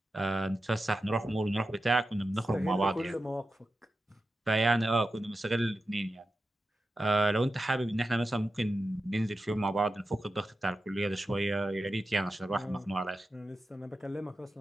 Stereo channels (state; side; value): normal; both; correlation 0.91